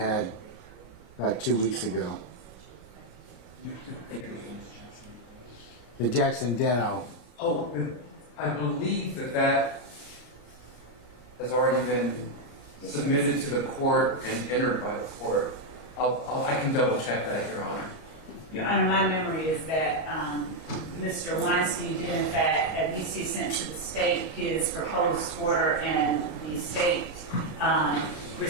about 2 weeks ago. The Jackson Deno. Oh, I believe that has already been submitted to the court and entered by the court. I can double check that, Your Honor. Your Honor, my memory is that Mr. Weinstein did in fact, at least he sent to the state his proposed order, and the state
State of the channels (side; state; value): right; late; 32 ms